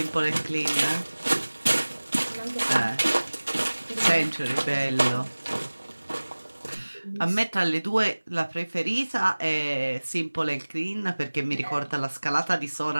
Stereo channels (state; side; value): inverted; both; correlation -1.00